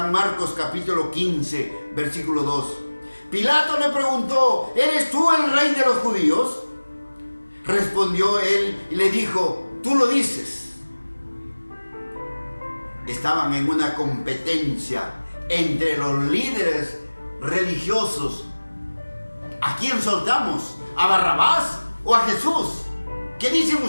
Marcos capítulo 15, versículo 2. Pilato le preguntó: ¿eres tú el rey de los judíos? Respondió él y le dijo: tú lo dices. Estaban en una competencia entre los líderes religiosos. ¿A quién soltamos? ¿A Barrabás o a Jesús? ¿Qué dicen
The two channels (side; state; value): both; inverted; correlation -1.00